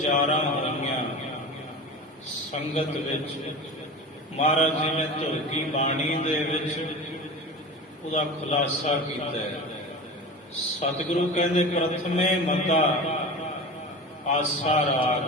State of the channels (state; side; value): normal; both; correlation 0.31